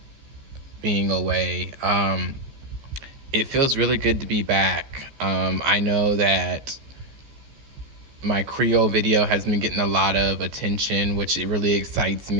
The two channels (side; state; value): left; late; 14 ms